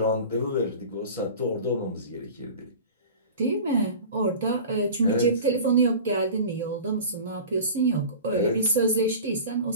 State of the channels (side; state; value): both; inverted; correlation -0.37